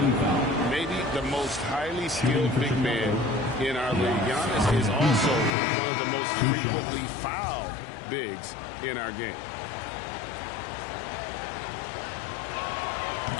Maybe the most highly skilled big man in our league. Giannis is also one of the most frequently fouled bigs in our game.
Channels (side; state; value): right; drops out; at 5.6 s